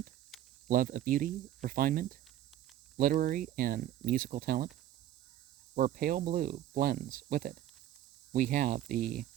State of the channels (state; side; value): quieter; left; 12.4 dB